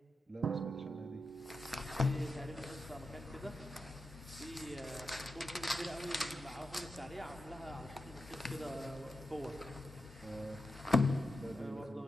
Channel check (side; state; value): both; normal; correlation 0.89